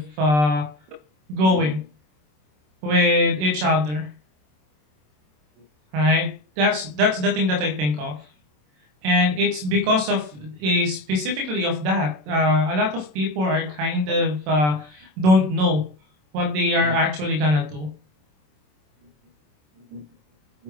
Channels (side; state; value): left; late; 27 ms